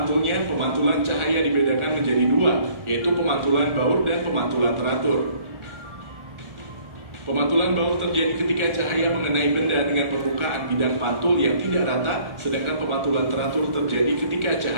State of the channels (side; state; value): left; late; 1.4 ms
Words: pemantulan cahaya dibedakan menjadi dua, yaitu pemantulan baur dan pemantulan teratur. Pemantulan baur terjadi ketika cahaya mengenai benda dengan permukaan bidang pantul yang tidak rata, sedangkan pemantulan teratur terjadi ketika